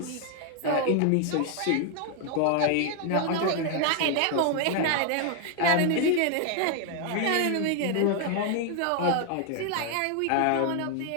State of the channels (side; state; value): both; different; correlation 0.01